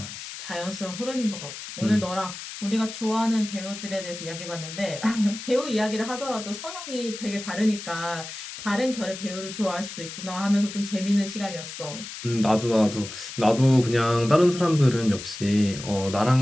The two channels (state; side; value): noise; left; hiss, 10 dB below the sound